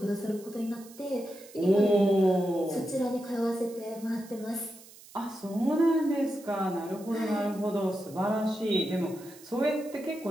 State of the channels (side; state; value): right; noise; hiss, 21 dB below the sound